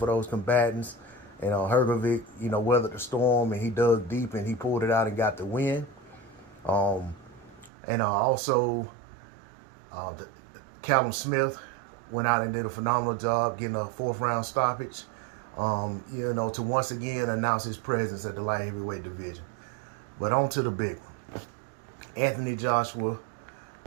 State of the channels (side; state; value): left; drops out; at 7.7 s